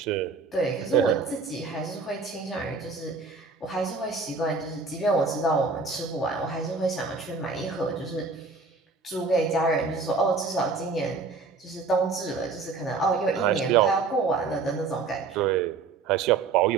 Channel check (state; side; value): quieter; left; 4.4 dB